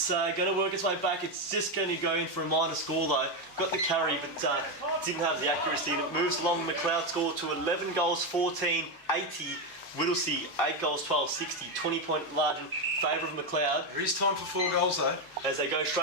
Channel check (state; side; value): normal; both; correlation 0.09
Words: going to work its way back. It's just going to go in for a minor score though. Got the carry, but didn't have the accuracy, and it moves along. Macleod score to 11 goals 14, 80. Whittlesea, 8 goals 12, 60, 20-point margin, favour of Macleod. There is time for 4 goals though. As they go